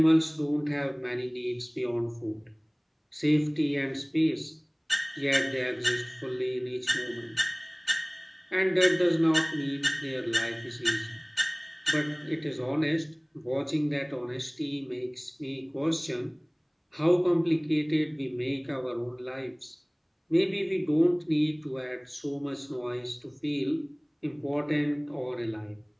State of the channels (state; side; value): identical; both; correlation 1.00